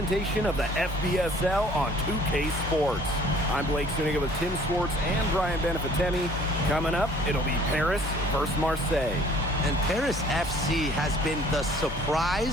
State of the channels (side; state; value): both; normal; correlation 0.55